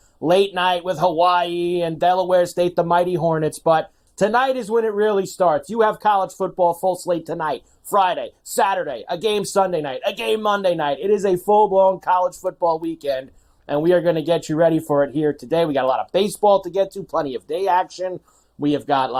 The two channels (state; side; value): identical; both; correlation 1.00